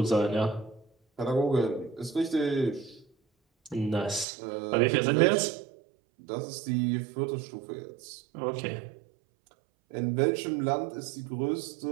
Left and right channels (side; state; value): left; drops out; at 4.2 s